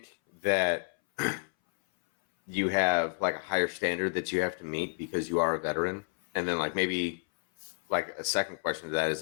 that you have like a higher standard that you have to meet because you are a veteran? And then like maybe like a second question to that is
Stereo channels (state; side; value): silent; right; 58 dB below the other